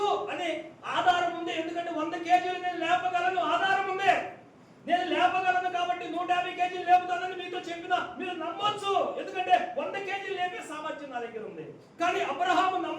అని ఆధారం ఉంది. ఎందుకంటే 100 కేజీలు నేను లేపగలను, ఆధారం ఉంది. నేను లేపగలను కాబట్టి 150 కేజీలు లేపుతానని మీతో చెప్పినా మీరు నమ్మొచ్చు, ఎందుకంటే 100 కేజీలు లేపే సామర్థ్యం నా దగ్గర ఉంది. కానీ అబ్రహాము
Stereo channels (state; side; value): identical; both; correlation 1.00